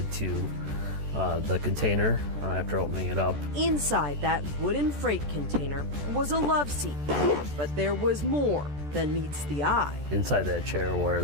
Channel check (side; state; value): left; late; 14 ms